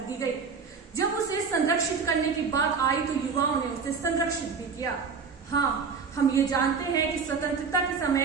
दी गई। जब उसे संरक्षित करने की बात आई तो युवाओं ने उसे संरक्षित भी किया। हाँ, हम ये जानते हैं कि स्वतंत्रता के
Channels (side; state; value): left; quieter; 5.5 dB